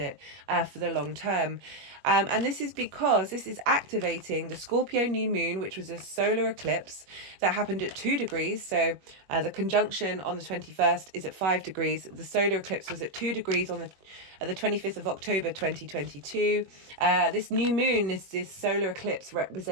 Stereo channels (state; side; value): late; left; 21 ms